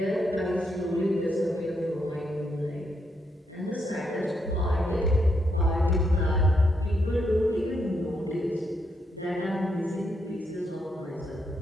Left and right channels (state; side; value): normal; both; correlation 0.79